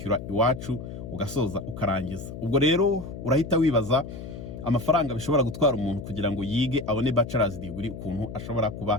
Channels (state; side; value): noise; left; hum, 10 dB below the sound